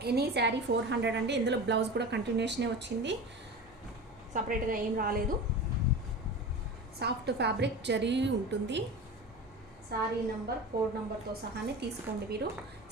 ఎనీ శారీ 400 అండి. ఇందులో బ్లౌజ్ కూడా కంటిన్యూషనే వచ్చింది, సపరేట్గా ఏం రాలేదు. సాఫ్ట్ ఫ్యాబ్రిక్ జరీ ఉంటుంది. శారీ నెంబర్, కోడ్ నెంబర్తో సహానే తీసుకోండి మీరు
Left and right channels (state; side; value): normal; both; correlation 0.31